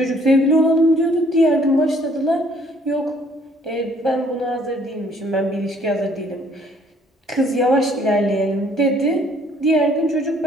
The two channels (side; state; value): both; normal; correlation 0.61